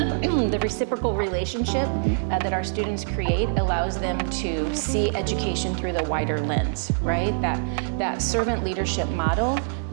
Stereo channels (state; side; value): silent; left; digital silence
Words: reciprocal relationship that our students create allows them to see education through the wider lens, right? That servant leadership model